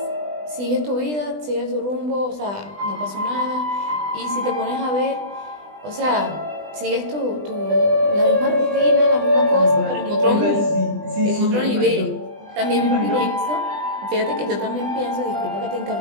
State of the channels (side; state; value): left; late; 20 ms